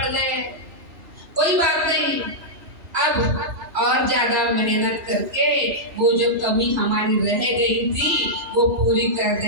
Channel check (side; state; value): left; late; 2.0 ms